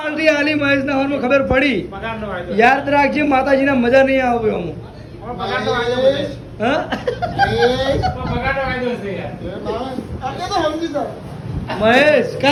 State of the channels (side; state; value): both; identical; correlation 1.00